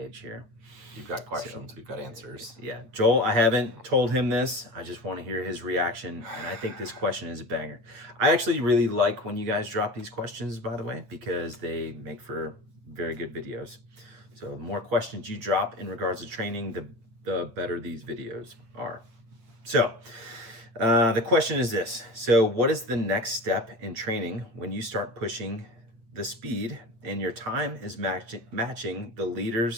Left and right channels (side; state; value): left; late; 8.8 ms